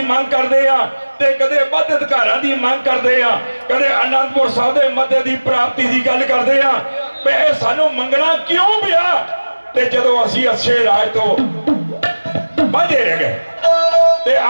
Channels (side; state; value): both; inverted; correlation -1.00